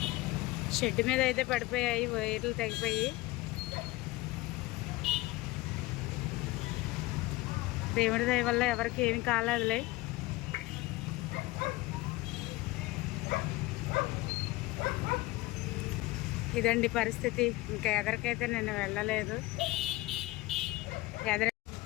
షెడ్ మీద అయితే పడిపోయాయి, వైర్లు తెగిపోయి. దేవుడి దయ వల్ల ఎవరికి ఏమి కాలేదులే. ఇదండి పరిస్థితి. ఇంకా ఎదరికైతే నేను వెళ్ళలేదు.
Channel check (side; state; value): right; quieter; 20.0 dB